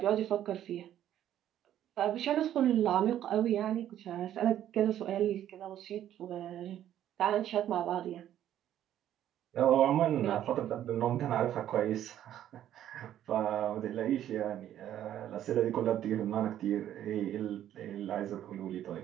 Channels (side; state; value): left; quieter; 11.5 dB